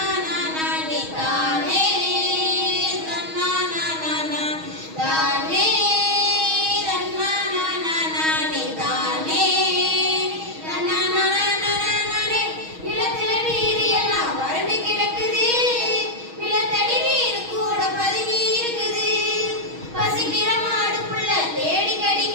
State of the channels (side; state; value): left; late; 6.3 ms